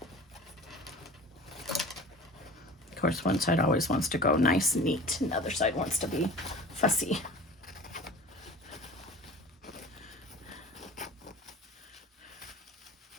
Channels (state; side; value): normal; both; correlation 0.40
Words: course, one side always wants to go nice and neat, and the other side wants to be fussy.